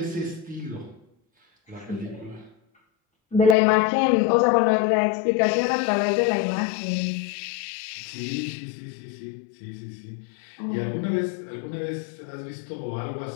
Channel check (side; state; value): right; drops out; at 3.6 s